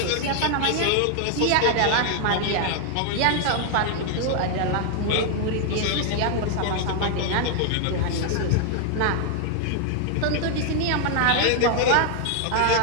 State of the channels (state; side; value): different; both; correlation 0.00